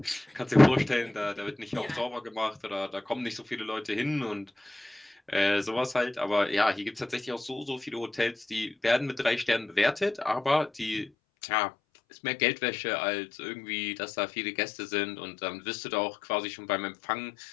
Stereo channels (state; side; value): drops out; right; at 11.1 s